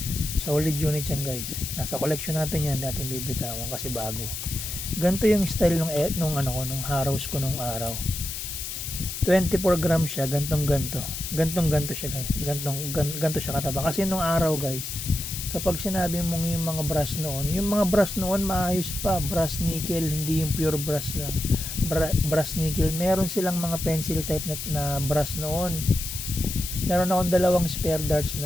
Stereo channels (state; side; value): noise; left; hiss, 6 dB below the sound